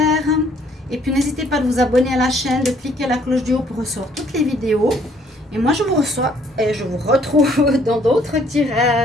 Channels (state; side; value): normal; both; correlation 0.63